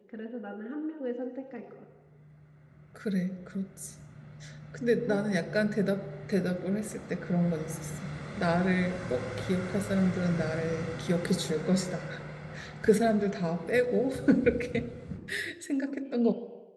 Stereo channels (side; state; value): both; identical; correlation 1.00